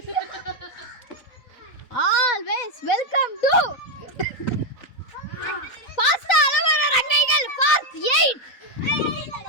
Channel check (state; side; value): late; right; 4.0 ms